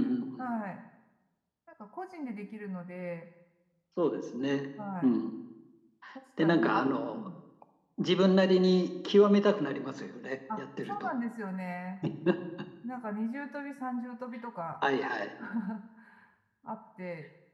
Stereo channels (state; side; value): identical; both; correlation 1.00